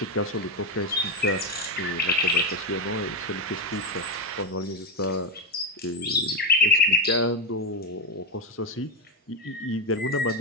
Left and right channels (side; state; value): both; normal; correlation 0.08